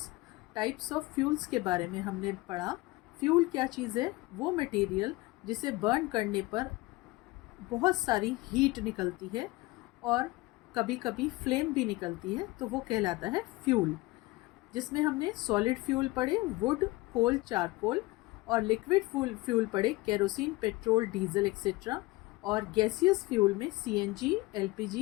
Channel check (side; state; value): right; quieter; 21.1 dB